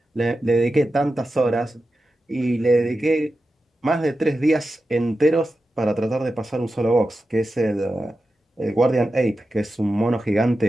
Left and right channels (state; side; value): normal; both; correlation 0.92